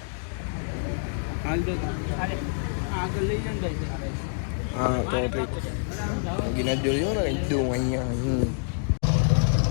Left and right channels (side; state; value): right; silent; digital silence